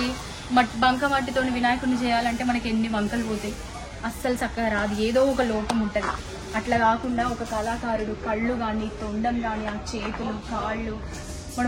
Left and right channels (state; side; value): identical; both; correlation 1.00